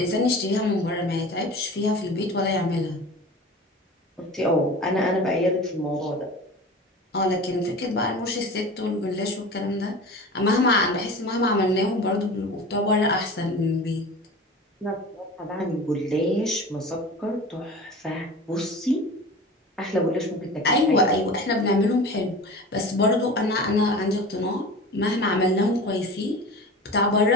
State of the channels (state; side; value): normal; both; correlation 0.35